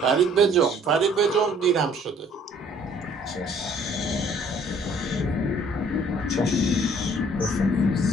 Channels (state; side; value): normal; both; correlation 0.58